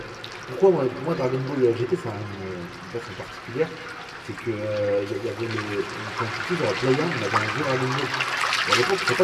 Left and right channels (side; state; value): both; identical; correlation 1.00